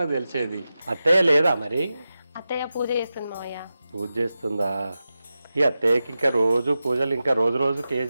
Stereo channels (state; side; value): inverted; both; correlation -0.93